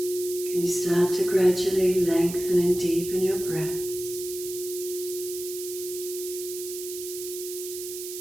Can you start to gradually lengthen and deepen your breaths?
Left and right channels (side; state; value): right; noise; hiss, 9 dB below the sound